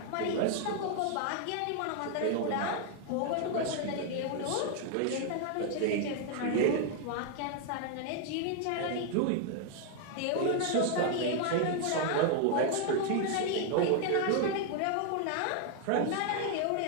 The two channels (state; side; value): different; both; correlation 0.00